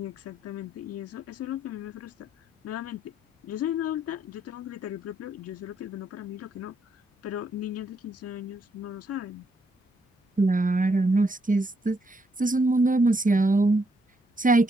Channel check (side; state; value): both; normal; correlation 0.75